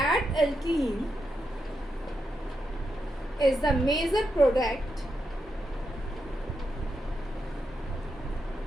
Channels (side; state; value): both; normal; correlation 0.85